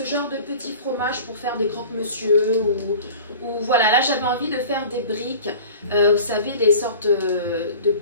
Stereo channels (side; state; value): both; inverted; correlation -0.41